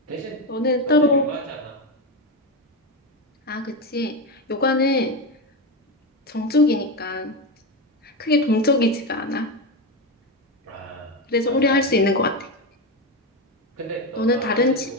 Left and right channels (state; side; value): normal; both; correlation 0.14